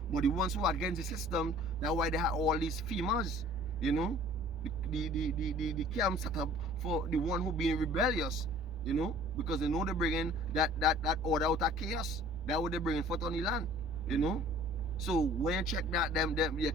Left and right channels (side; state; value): both; normal; correlation 0.50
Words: But the ones who are against the system, that's why they have all these females, you know. The camp set up for the one who being rebellious, you know, because they know they're bringing that order out of chaos. That's what they're bringing forth on the land, you know. So when you check that,